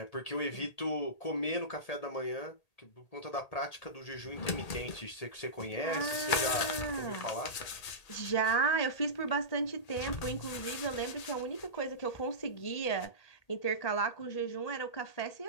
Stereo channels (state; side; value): late; right; 1.8 ms